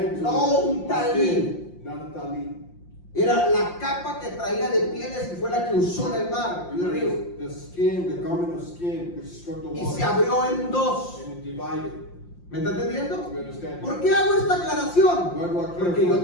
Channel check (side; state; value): right; late; 5.7 ms